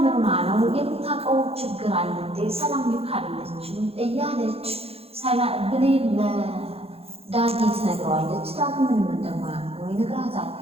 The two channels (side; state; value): left; late; 0.29 ms